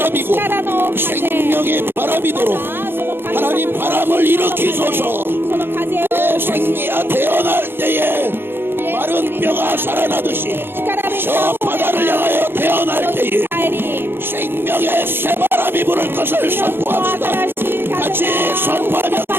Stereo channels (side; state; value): left; late; 0.10 ms